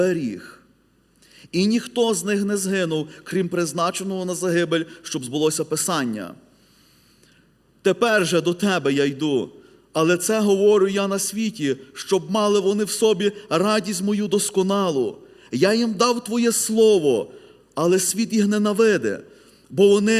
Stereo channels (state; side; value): identical; both; correlation 1.00